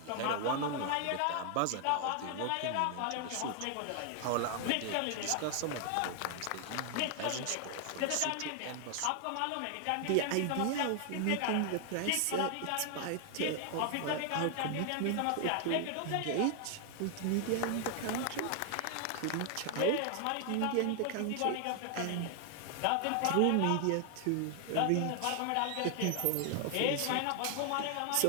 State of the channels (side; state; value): both; different; correlation 0.00